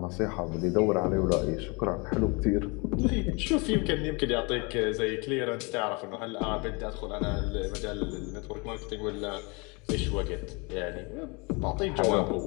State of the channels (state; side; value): quieter; right; 29.5 dB